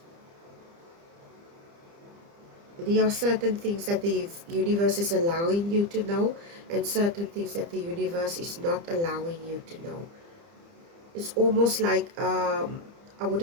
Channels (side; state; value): left; late; 30 ms